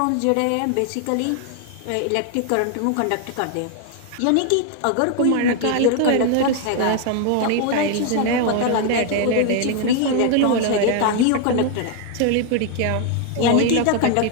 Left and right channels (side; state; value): both; different; correlation 0.00